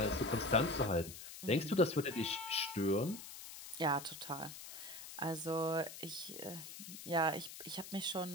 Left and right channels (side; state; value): left; noise; hiss, 12 dB below the sound